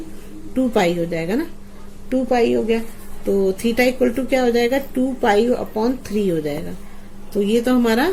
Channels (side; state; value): both; identical; correlation 1.00